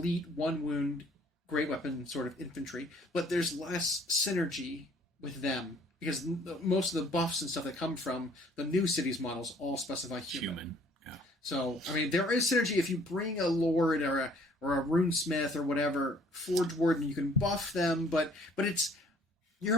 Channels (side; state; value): both; normal; correlation 0.58